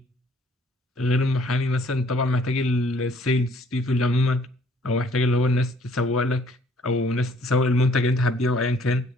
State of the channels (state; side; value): normal; both; correlation 0.60